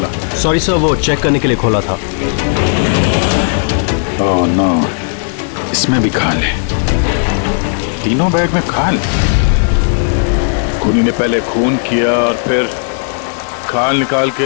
सॉरी सर वो चेक करने के लिए खोला था। ओह नो, इसमें भी खाल है। तीनों बैग में खाल। खूनी ने पहले खून किया और फिर खाल निकाल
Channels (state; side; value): silent; right; digital silence